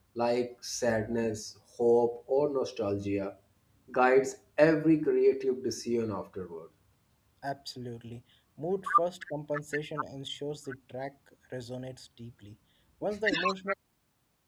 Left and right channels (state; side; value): identical; both; correlation 1.00